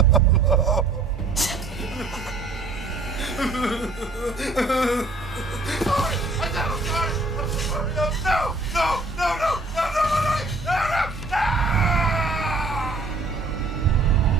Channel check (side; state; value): left; quieter; 3.3 dB